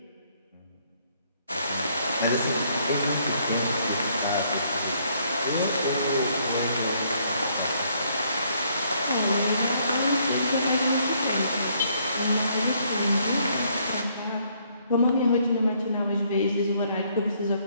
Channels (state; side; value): inverted; both; correlation -0.68